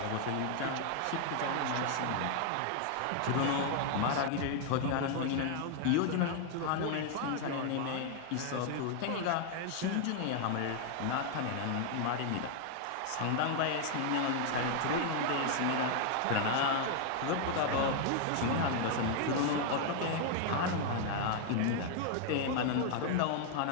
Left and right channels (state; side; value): different; both; correlation 0.00